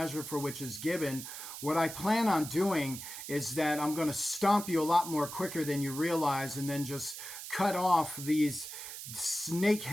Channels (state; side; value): noise; right; hiss, 10 dB below the sound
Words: for which is given. What I plan on doing is that I'm going to stomp you a lot more quicker than you realize, and then just cut off these